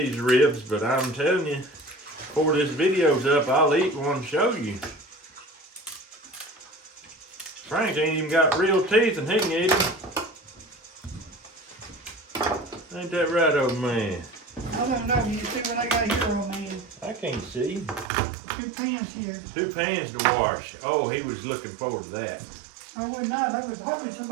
ribs, but I'm telling you, before this video's up, I'll eat one and show you. Frank ain't even got real teeth and he can eat them. Ain't that right, old man? I don't know. You see what I got here, old man? I can't see. 2 pans here. 2 pans to wash. Oh, he was looking forward to that. I was not. I was hoping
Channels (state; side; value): drops out; left; at 18.1 s